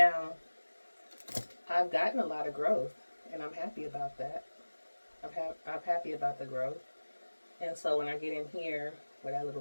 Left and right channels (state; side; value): inverted; both; correlation -1.00